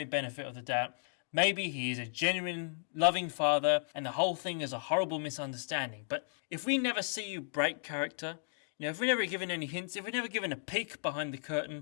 benefit of the doubt, maybe he is a genuine, loving father and the whole thing is a horrible misunderstanding. But if we never see you break character, if we're never given any hints, if we're never given a peek behind the curtain,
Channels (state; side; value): silent; right; digital silence